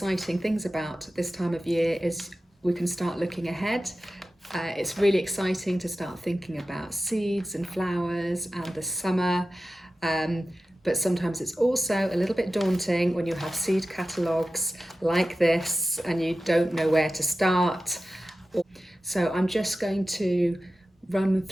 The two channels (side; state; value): both; normal; correlation 0.94